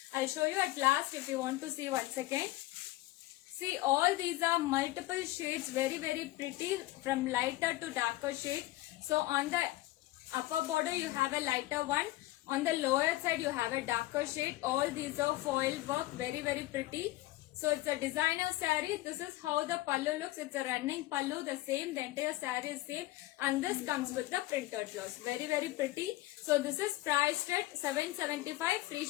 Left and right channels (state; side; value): quieter; right; 17.4 dB